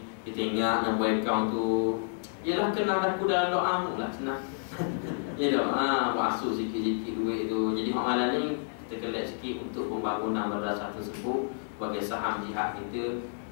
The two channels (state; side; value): silent; right; 58 dB below the other